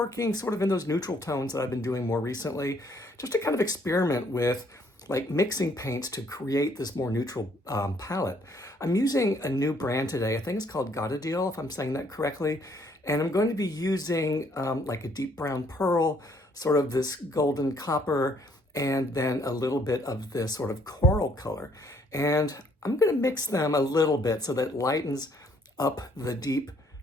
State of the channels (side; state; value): both; normal; correlation 0.65